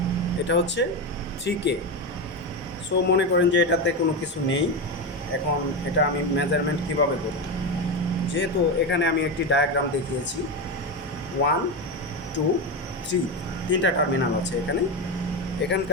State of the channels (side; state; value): both; normal; correlation 0.15